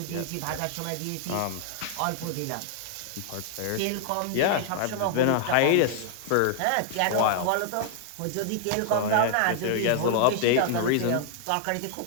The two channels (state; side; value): different; both; correlation -0.01